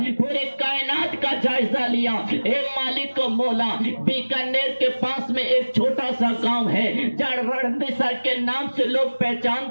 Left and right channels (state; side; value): inverted; both; correlation -1.00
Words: پورے کائنات کا جائزہ لیا۔ اے مالک و مولا بیکانیر کے پاس میں ایک چھوٹا سا گاؤں ہے جہاں رڑمسر کے نام سے لوگ